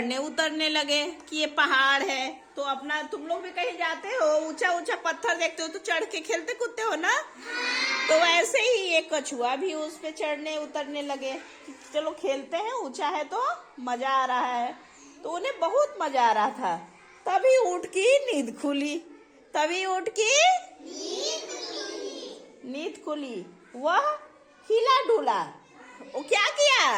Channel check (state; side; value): identical; both; correlation 1.00